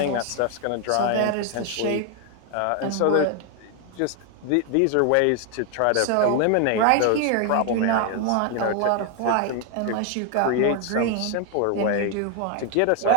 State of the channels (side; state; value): both; different; correlation 0.01